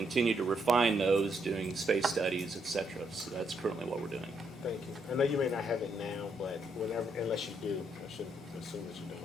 to refine those, doing space studies, et cetera. So that's currently what we're doing. Thank you. I know you may not have it now, but whenever, unless you do, I should assume that you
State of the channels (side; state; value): both; normal; correlation 0.76